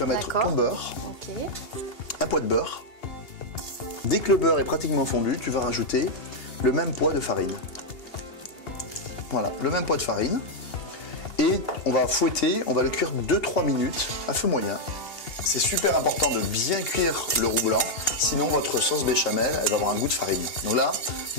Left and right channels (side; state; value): right; late; 2.8 ms